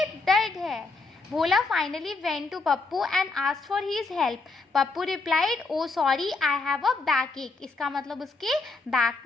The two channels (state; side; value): quieter; right; 3.7 dB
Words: दर्द है। Bhola finally went to Pappu and asked for his help. Pappu replied, oh sorry, I have a backache, इसका मतलब उसके बैक